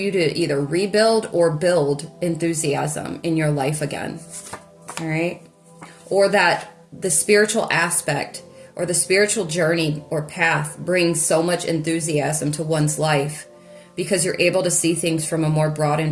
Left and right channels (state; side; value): identical; both; correlation 1.00